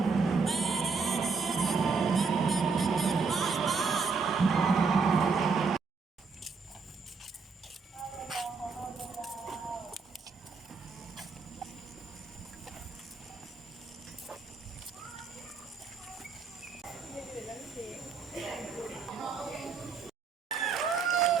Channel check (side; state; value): left; quieter; 4.9 dB